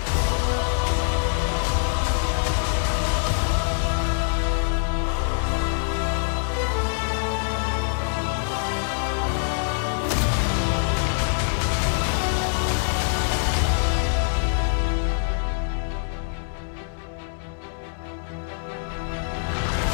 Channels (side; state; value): right; silent; 61 dB below the other